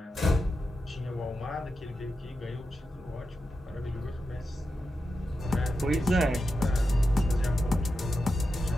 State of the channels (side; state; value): both; normal; correlation 0.89